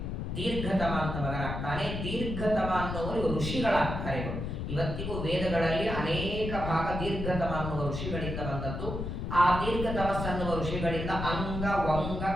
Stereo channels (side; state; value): left; noise; rumble, 4 dB below the sound